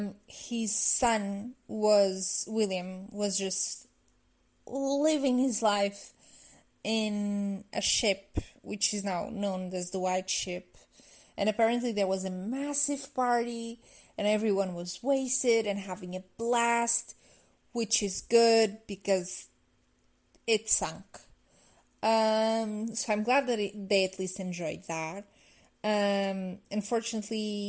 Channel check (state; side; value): identical; both; correlation 1.00